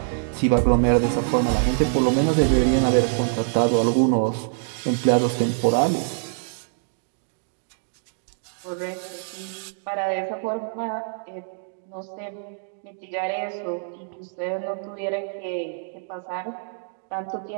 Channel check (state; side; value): silent; left; digital silence